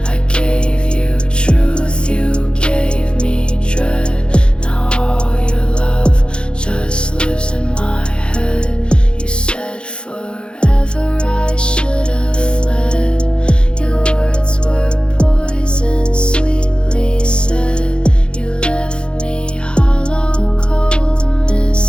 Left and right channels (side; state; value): right; late; 0.054 ms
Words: I gave you truth, you gave me dread. Now all your love just lives in my head. You said forever I should have fled. Your words were poison, sweetly said. You left me hollow, cold,